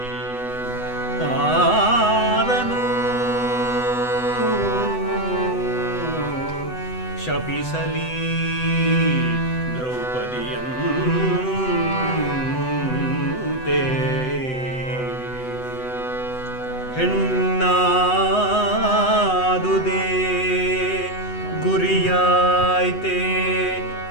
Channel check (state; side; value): late; right; 8.0 ms